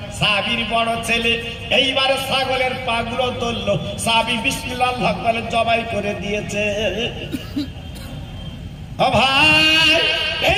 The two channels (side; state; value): both; identical; correlation 1.00